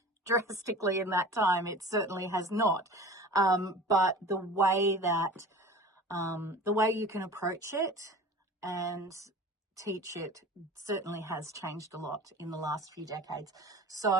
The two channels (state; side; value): normal; both; correlation 0.39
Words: drastically in that time. It certainly has not. But the way you can approach it and teach it certainly has changed a lot in the last few decades. So